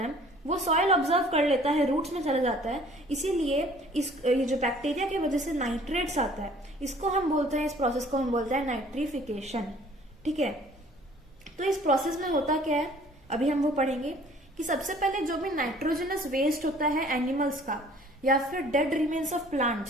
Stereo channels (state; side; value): normal; both; correlation 0.54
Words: वो सॉइल ऑब्जर्व कर लेता है, रूट्स में चला जाता है, इसीलिए ये जो बैक्टीरिया की वजह से नाइट्रेट्स आता है इसको हम बोलते हैं, इस प्रोसेस को हम बोलते हैं नाइट्रिफिकेशन, ठीक है। तो इस प्रोसेस में होता क्या है अभी हम वो पढ़ेंगे कि सबसे पहले जो भी नाइट्रोजनस वेस्ट होता है एनिमल्स का या फिर डेड रिमेन्स ऑफ